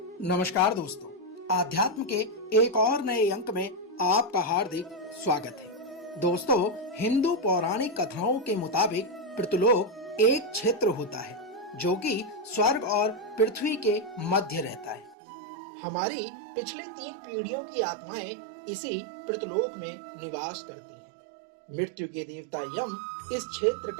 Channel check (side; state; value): left; drops out; at 15.2 s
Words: दोस्तों, आध्यात्म के एक और नए अंक में आपका हार्दिक स्वागत है। दोस्तों, हिंदू पौराणिक कथाओं के मुताबिक पृथ्वीलोक एक क्षेत्र होता है जो कि स्वर्ग और पृथ्वी के मध्य रहता है। हमारी पिछली 3 पीढ़ियों की आत्माएं इसी पृथ्वीलोक में निवास करती हैं। मृत्यु के देवता यम इस क्षेत्र